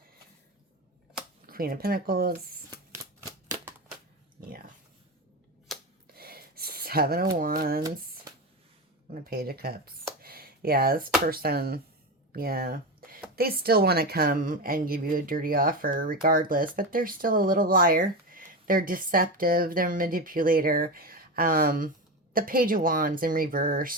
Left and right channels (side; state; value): both; normal; correlation 0.19